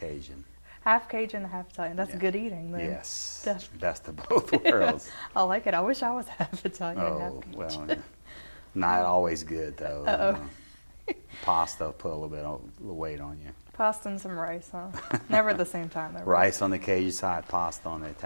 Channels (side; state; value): both; inverted; correlation -1.00